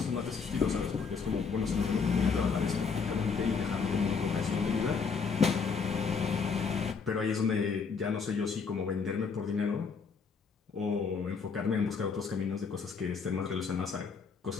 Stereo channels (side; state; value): right; quieter; 5.4 dB